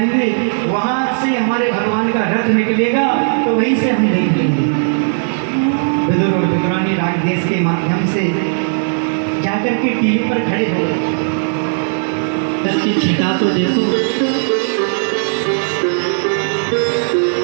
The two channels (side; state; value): left; silent; 69 dB below the other